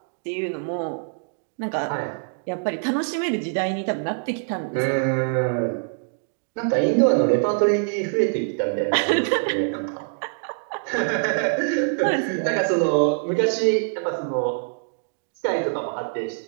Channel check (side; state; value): left; silent; digital silence